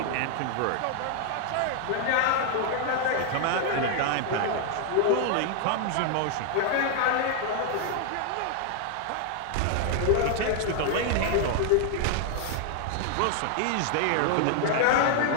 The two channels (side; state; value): both; different; correlation 0.00